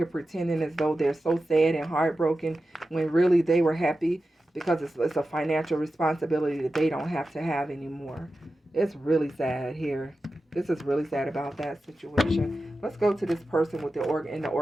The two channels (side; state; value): both; normal; correlation 0.93